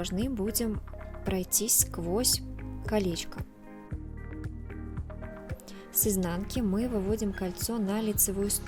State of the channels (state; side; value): identical; both; correlation 1.00